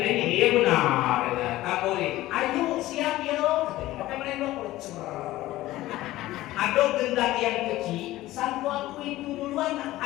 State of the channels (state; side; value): quieter; right; 16.4 dB